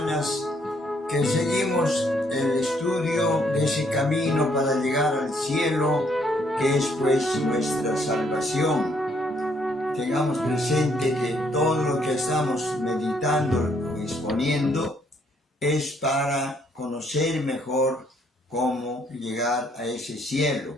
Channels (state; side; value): normal; both; correlation 0.69